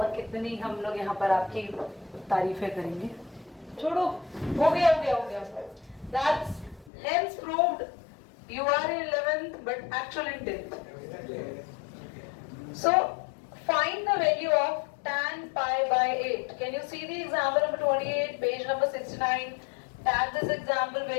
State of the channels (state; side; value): drops out; right; at 6.9 s